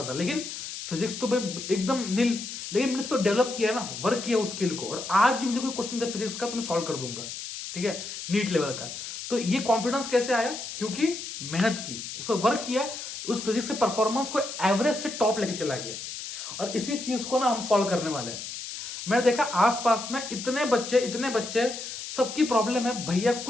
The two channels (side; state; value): left; noise; hiss, 8 dB below the sound